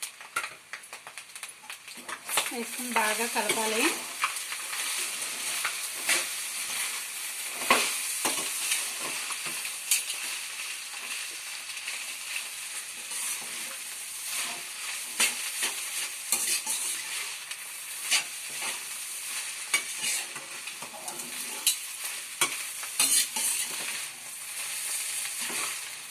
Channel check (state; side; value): identical; both; correlation 1.00